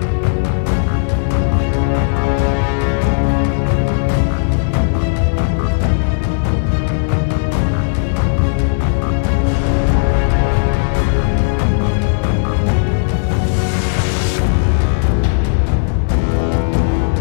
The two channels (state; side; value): silent; right; digital silence